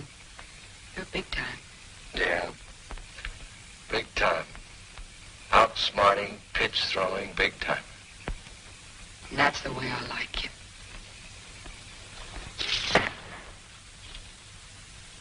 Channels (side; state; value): both; identical; correlation 1.00